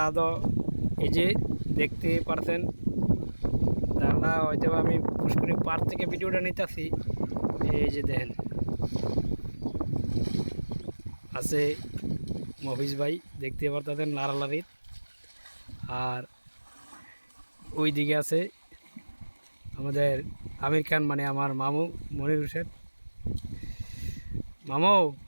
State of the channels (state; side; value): inverted; both; correlation -1.00